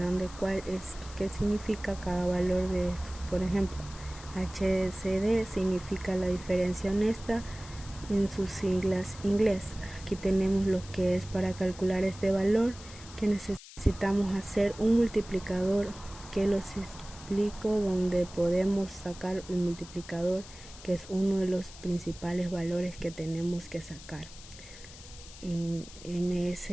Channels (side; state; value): left; noise; hiss, 17 dB below the sound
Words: de qué significa cada valor de estos. Por ejemplo, HCD significa la diferencia honesta en sus siglas inglés. Aquí tenemos lo que es para calcular este valor, que necesitamos hacer un multiplicador que lo explico donde podemos sacar el multiplicador, que es uno de los principales valores que tenemos que sacar. MS